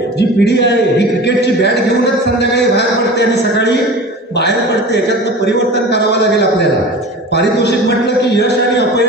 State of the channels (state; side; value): normal; both; correlation 0.35